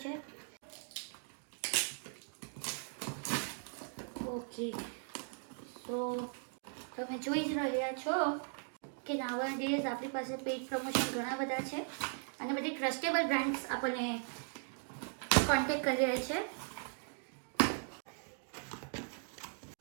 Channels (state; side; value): silent; left; 52 dB below the other